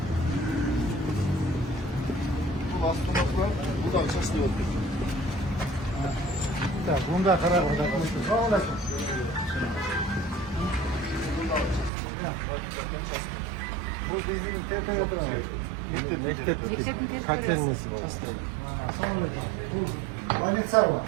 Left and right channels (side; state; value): left; drops out; at 11.9 s